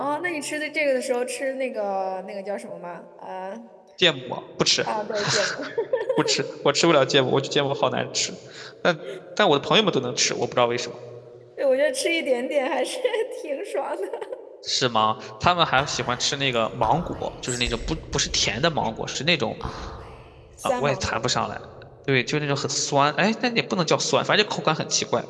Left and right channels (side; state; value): both; identical; correlation 1.00